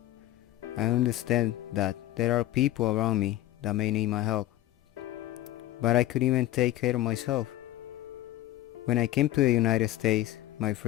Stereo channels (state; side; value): quieter; right; 14.7 dB